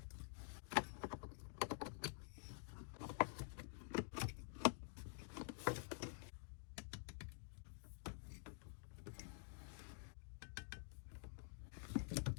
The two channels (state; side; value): silent; right; digital silence